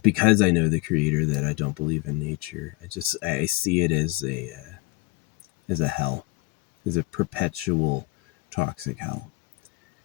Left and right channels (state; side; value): quieter; right; 23.3 dB